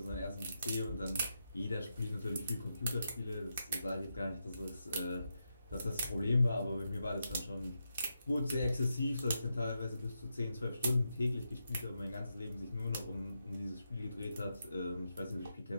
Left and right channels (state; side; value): inverted; both; correlation -0.86